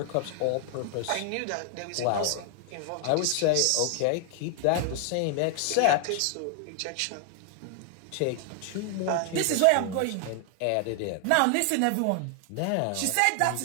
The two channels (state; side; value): different; both; correlation 0.00